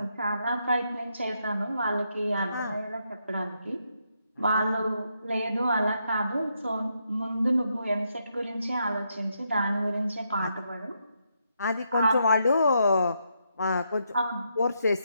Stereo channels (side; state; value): both; inverted; correlation -0.79